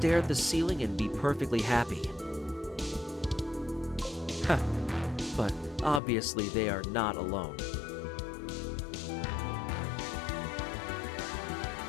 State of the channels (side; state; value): right; drops out; at 6.0 s